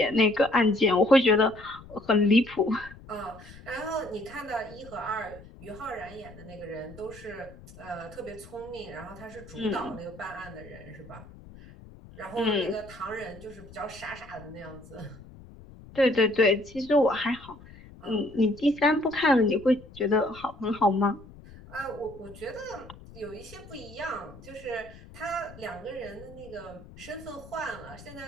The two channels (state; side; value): noise; left; rumble, 19 dB below the sound